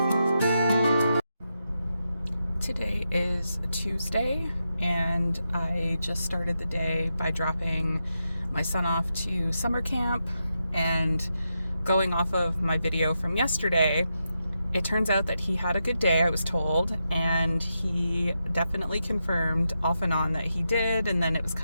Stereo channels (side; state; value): both; inverted; correlation -0.86